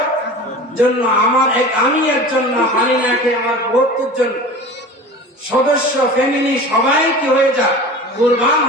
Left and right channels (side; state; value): both; normal; correlation 0.36